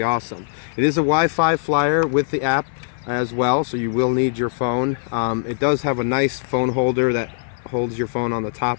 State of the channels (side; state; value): right; silent; 56 dB below the other